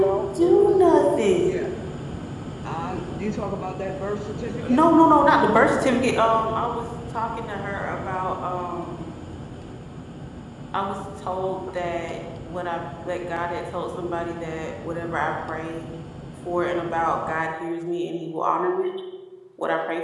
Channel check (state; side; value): identical; both; correlation 1.00